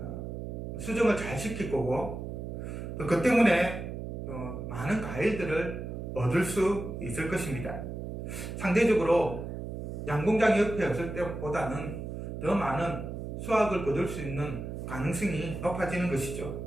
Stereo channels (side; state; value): right; noise; hum, 6 dB below the sound